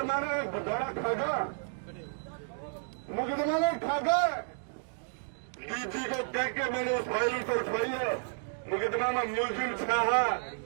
ने घोटाला खागा, मुकदमा ने खागा, डीजी को कह के मैंने उस फाइल को उठवाई है। मुकदमा में मुलजिम छाहा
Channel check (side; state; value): left; silent; digital silence